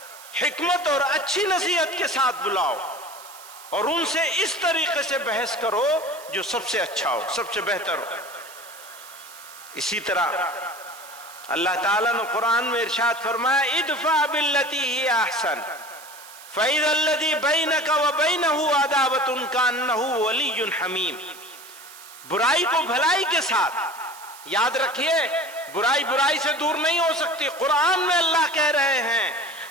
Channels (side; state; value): right; noise; hiss, 18 dB below the sound